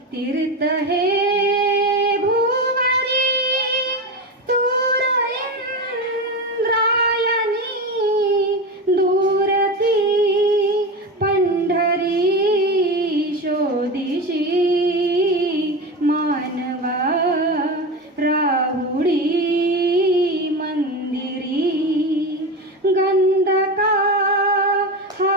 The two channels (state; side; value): normal; both; correlation 0.21